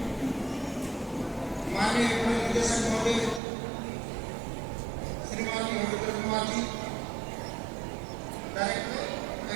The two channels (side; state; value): left; drops out; at 3.4 s